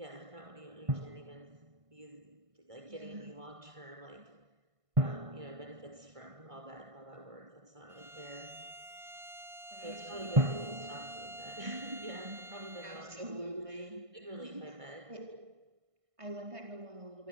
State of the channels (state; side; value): late; left; 1.5 ms